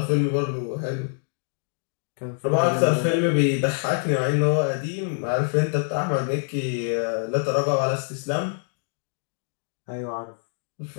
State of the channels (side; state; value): right; silent; digital silence